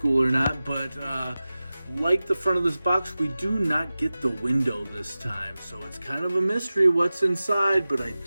or not, but like the front of this box, we do not get the window this time, so it's kind of a mystery what's inside, but I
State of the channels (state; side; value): inverted; both; correlation -0.96